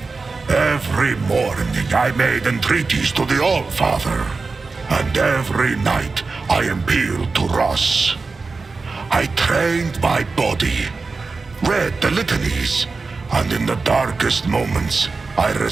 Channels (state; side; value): quieter; left; 4.1 dB